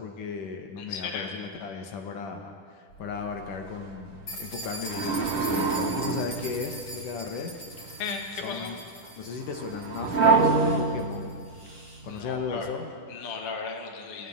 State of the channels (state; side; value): late; right; 10 ms